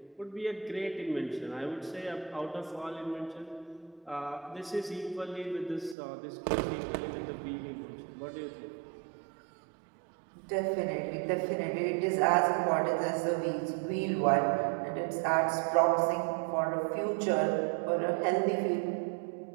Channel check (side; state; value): left; drops out; at 6.0 s